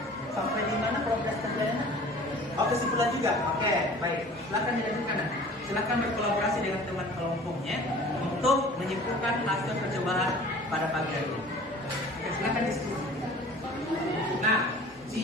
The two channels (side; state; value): both; normal; correlation 0.45